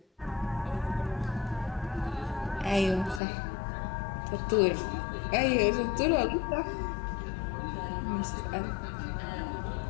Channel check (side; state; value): right; drops out; at 3.2 s